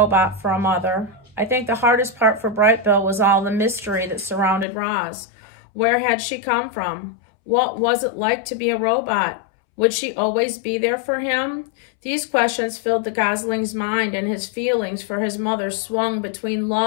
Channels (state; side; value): drops out; right; at 4.7 s